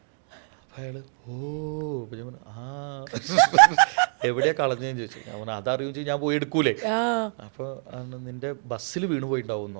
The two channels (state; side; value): silent; left; 56 dB below the other